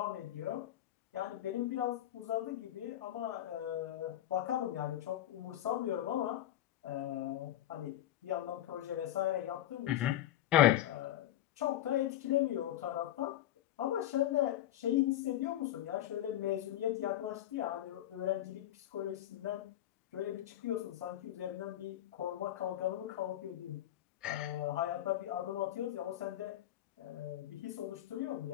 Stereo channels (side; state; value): right; quieter; 12.6 dB